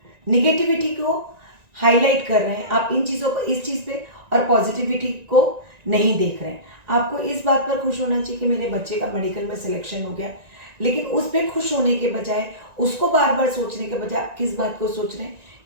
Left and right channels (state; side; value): late; left; 1.9 ms